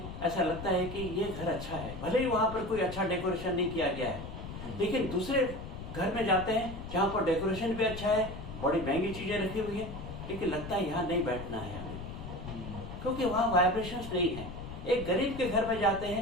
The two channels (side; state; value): left; noise; rumble, 9 dB below the sound